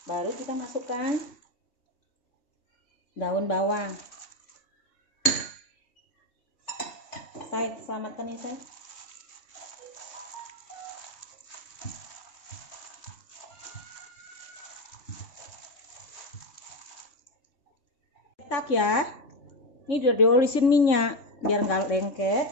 baru kita masukkan daun bawang. Saya selamatkan ya saya. Cetak ya. Ini udah diolisin minyak biar nggak lengket.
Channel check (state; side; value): late; right; 3.6 ms